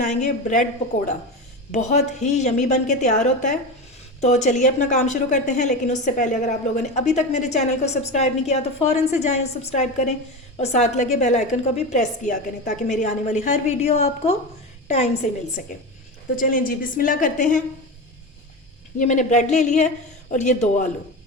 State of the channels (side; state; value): both; normal; correlation 0.22